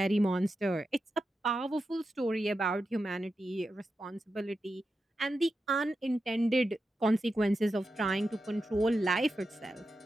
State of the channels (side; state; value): both; normal; correlation 0.89